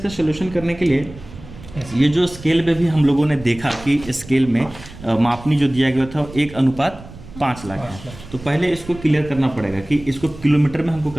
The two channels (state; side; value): noise; right; rumble, 17 dB below the sound